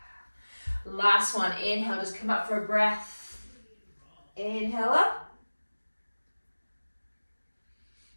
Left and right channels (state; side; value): inverted; both; correlation -1.00